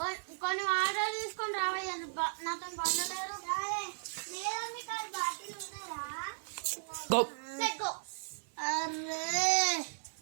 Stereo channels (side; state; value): left; silent; 54 dB below the other